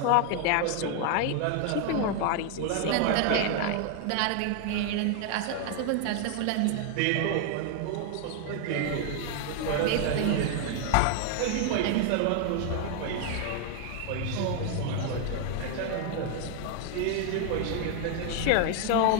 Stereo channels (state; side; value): different; both; correlation 0.00